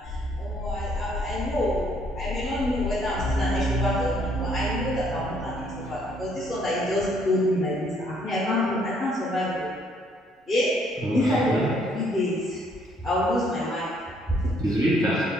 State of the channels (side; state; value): both; normal; correlation 0.66